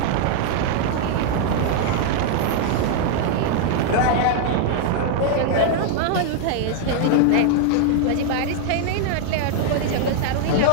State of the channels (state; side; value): different; both; correlation 0.00